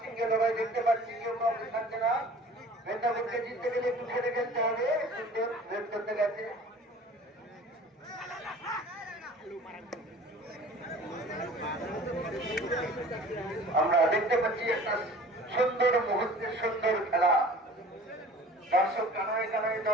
লড়াই দেখতে পাচ্ছি, কেউ কাউকে থাকছে না। মেদিনীপুরকে জিততে গেলে একটু খেলে খেলতে হবে। সুন্দর বের করতে গেছে। আমরা দেখতে পাচ্ছি একটা সুন্দর মুহূর্তের সুন্দর খেলা। দর্শক কানায় কানায়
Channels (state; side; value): normal; both; correlation 0.45